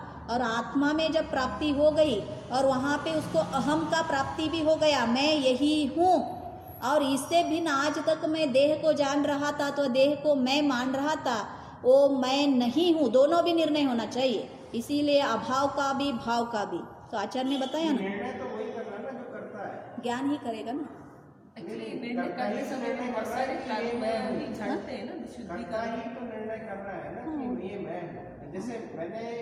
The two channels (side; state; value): both; identical; correlation 1.00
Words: और आत्मा में जब प्राप्ति हो गई और वहाँ पे उसको अहम का प्राप्ति भी हो गया, मैं यही हूँ। और इससे भिन्न आज तक मैं देह को जान रहा था तो देह को मैं मान रहा था, वो मैं नहीं हूँ। दोनों भी निर्णय होना चाहिए, इसीलिए अभाव का भी भाव का भी। तो आचार्य ने बताया ना, निर्णय तो वही कर रहा है ना जो करता है। ज्ञान ही करेगा ना। एक्चुअली निर्णय करते समय में बहुत सारे कर्म भी झड़ते हैं ना, करता शुद्धिकरण। ही तो निर्णय कर रहा है ना कि ये मैं हूँ। जैसे मैंने